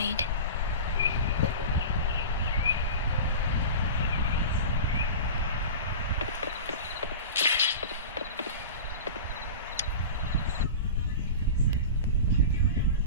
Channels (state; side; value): inverted; both; correlation -0.31